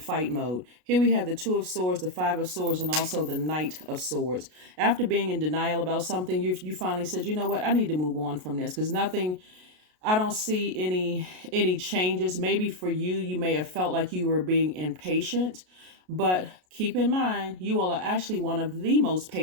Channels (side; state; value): left; late; 33 ms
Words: mode. Here we have the Two of Swords, the Five of Swords, and also the Knight of Swords. After being in denial about something, you finally said, you know what, I need to move on from this because I don't see any changes. Maybe for you, you may have felt like you were being impatient, but keep in mind, you all are actually one of the most